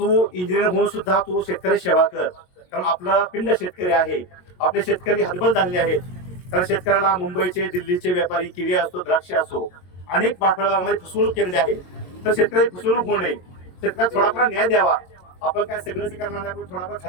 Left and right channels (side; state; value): right; late; 22 ms